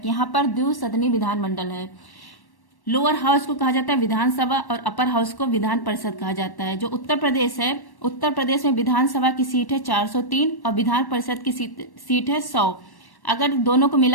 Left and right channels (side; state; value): right; late; 1.1 ms